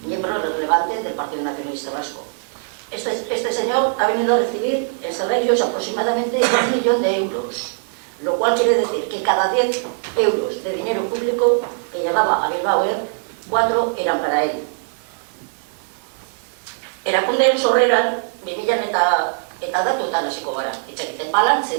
miembro relevante del Partido Nacionalista Vasco. Este señor ha venido a recibir en salarios aproximadamente 1 millón de euros, lo cual quiere decir que cada 10 euros de dinero público que llegaba a Bilbao Air, 4 eran para él. Erakundean sorreran, 2000 eta datuetan hasiko gara, itxakiten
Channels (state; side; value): silent; left; 60 dB below the other